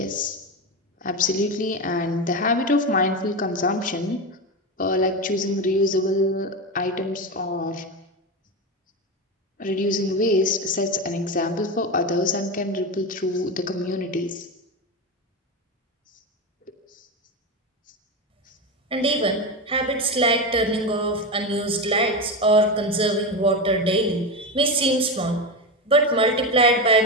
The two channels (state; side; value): normal; both; correlation 0.17